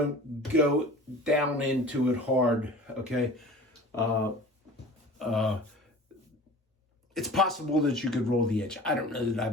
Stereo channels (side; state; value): both; normal; correlation 0.41